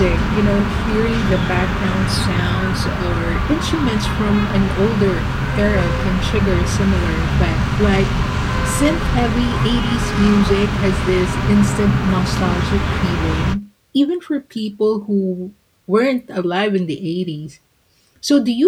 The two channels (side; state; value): both; identical; correlation 1.00